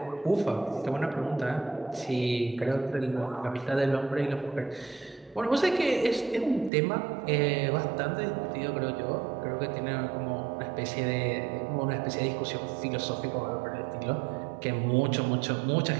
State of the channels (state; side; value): drops out; left; at 6.7 s